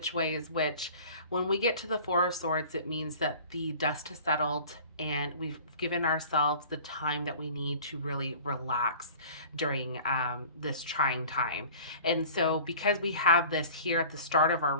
way is which. When we get to the Four of Swords, it means that the dust has settled and we've given ourselves the time that we need to really relax during this trying time. And so because we have this here at the start of our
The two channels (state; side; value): inverted; both; correlation -0.44